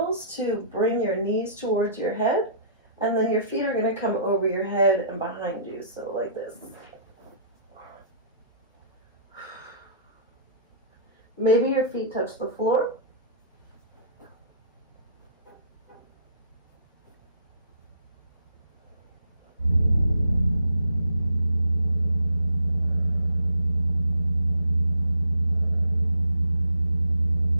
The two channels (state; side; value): inverted; both; correlation -0.57